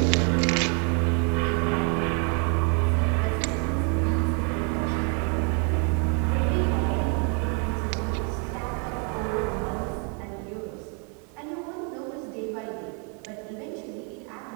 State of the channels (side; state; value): left; quieter; 37.0 dB